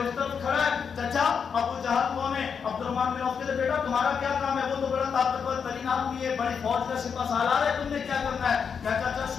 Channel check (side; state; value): right; quieter; 6.5 dB